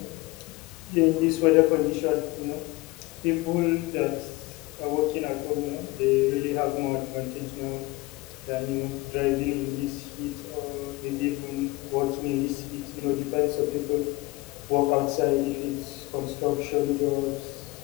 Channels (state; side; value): quieter; right; 21.6 dB